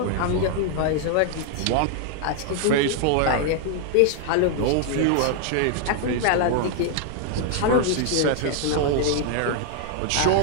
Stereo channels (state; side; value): different; both; correlation 0.00